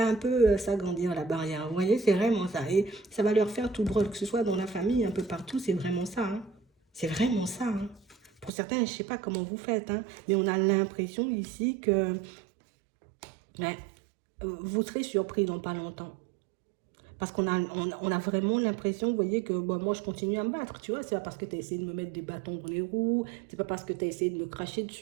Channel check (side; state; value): left; drops out; at 8.5 s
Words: un peu s'agrandir la barrière. Vous voyez, c'est vraiment ça. Et ça va leur faire tout drôle, que ce soit dans la famille, un peu partout. C'est vraiment ça. Hein. C'est vraiment ça. Hein. Pour certains, je ne sais pas comment vous faites, hein, mais on a l'impression ici que ouais, vous serez surpris dans pas longtemps. Parce qu'on a vraiment l'impression, vous voyez, que bon, moi je continue à me battre, tu vois. C'est pas parce que tu as essayé de me mettre des bâtons dans les roues, c'est pas parce que tu as essayé de me cracher